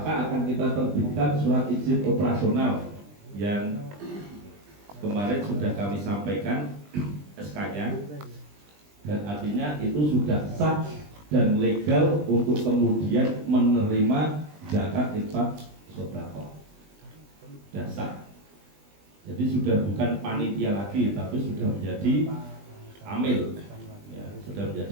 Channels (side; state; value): left; late; 20 ms